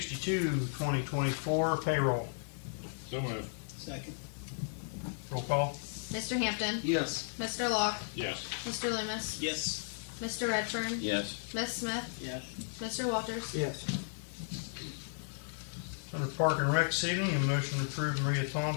2024, payroll. So moved. Second. Roll call. Mr. Hampton, Yes. Mr. Locke, Yes. Mr. Loomis, Yes. Mr. Redfern, Yes. Ms. Smith, Yes. Mr. Walters, Yes. Under Park and Rec this evening, a motion to approve Maria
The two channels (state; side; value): silent; right; digital silence